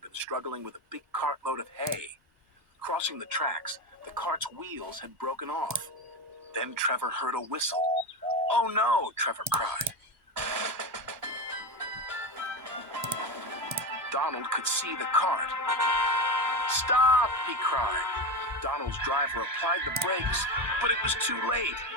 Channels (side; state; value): both; normal; correlation 0.18